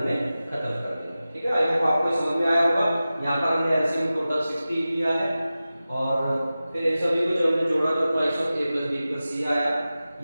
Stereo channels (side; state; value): both; inverted; correlation -0.95